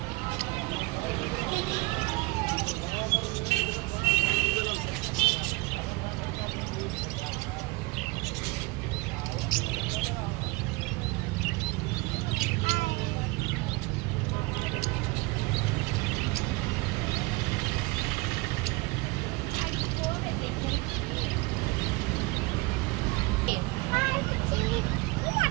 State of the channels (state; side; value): quieter; left; 23.9 dB